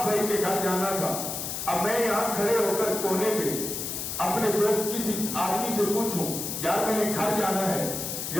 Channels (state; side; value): noise; left; hiss, 4 dB below the sound